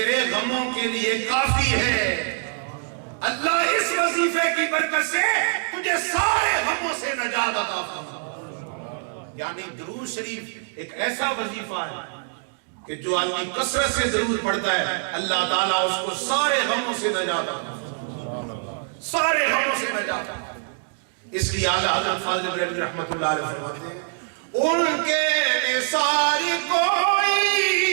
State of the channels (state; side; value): silent; left; 58 dB below the other